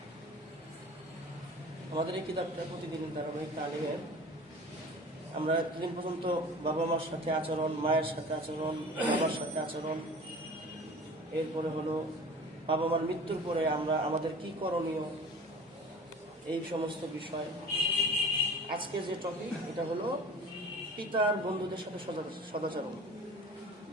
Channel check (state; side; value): normal; both; correlation 0.41